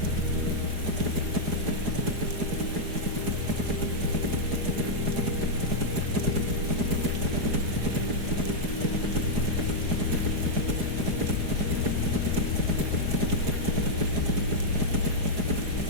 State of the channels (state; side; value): late; left; 4.8 ms